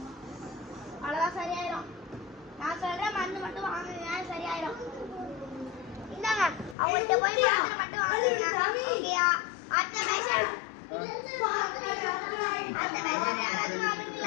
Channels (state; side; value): drops out; right; at 6.8 s